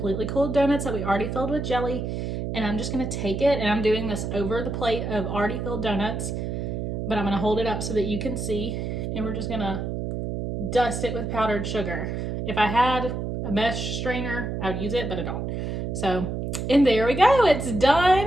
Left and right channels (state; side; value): noise; right; hum, 3 dB below the sound